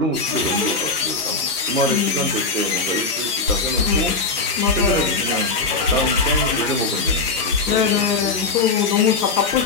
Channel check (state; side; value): quieter; right; 3.9 dB